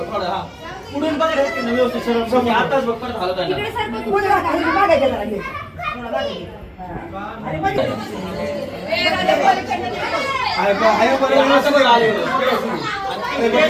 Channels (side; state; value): both; identical; correlation 1.00